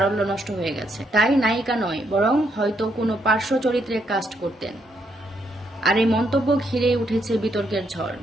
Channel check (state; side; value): normal; both; correlation 0.76